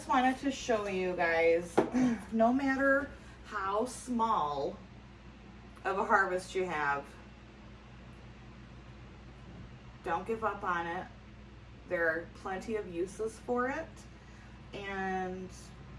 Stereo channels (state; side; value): identical; both; correlation 1.00